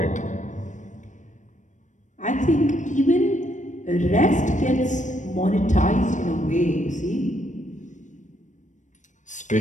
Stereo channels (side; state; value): right; late; 0.36 ms